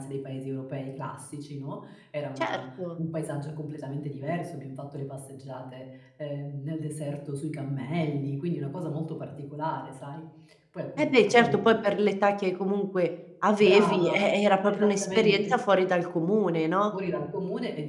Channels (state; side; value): identical; both; correlation 1.00